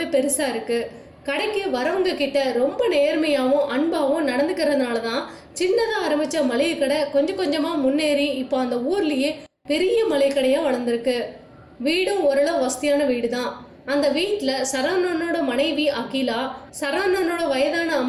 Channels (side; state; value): both; identical; correlation 1.00